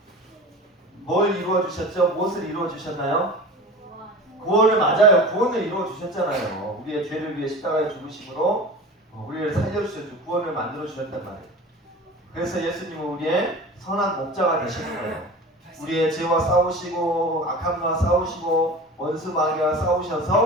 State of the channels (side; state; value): both; normal; correlation 0.35